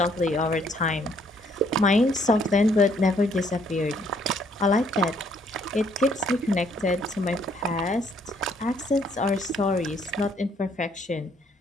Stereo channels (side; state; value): both; normal; correlation 0.66